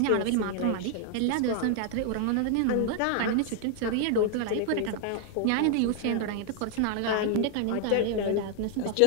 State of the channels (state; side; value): different; both; correlation 0.00